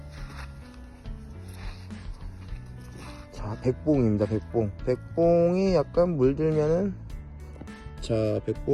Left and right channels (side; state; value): both; identical; correlation 1.00